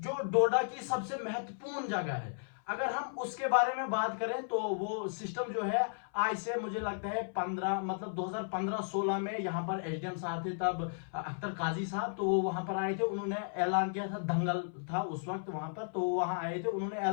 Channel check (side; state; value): right; silent; 55 dB below the other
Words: डोडा की सबसे महत्वपूर्ण जगह है, अगर हम उसके बारे में बात करें, तो वो सिस्टम जो है आज से मुझे लगता है 2015-16 में यहाँ पर एसडीएम साहब थे, तब अख्तर काजी साहब, तो वो वहां पर आए थे। उन्होंने ऐलान किया था, दंगल था उस वक्त वहां पर, तो वहां आए थे, उन्होंने